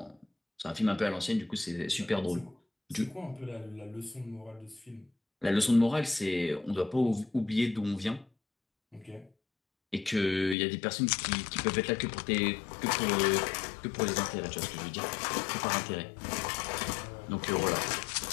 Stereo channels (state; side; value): drops out; right; at 10.6 s